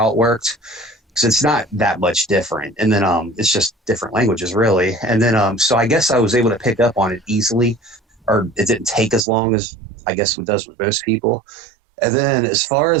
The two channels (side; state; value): left; drops out; at 9.2 s